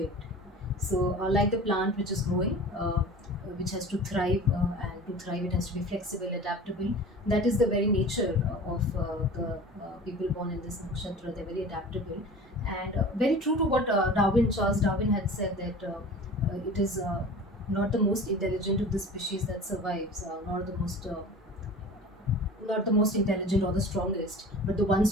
So, like the plant which is growing, which has to thrive, and to thrive, it has to be flexible, adaptable. That is the very nature of the people born in this nakshatra. They're very adaptable, and very true to what Charles Darwin had said, that it is not the most intelligent of the species that survives, not the most intelligent or the strongest, but the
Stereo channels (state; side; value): normal; both; correlation 0.39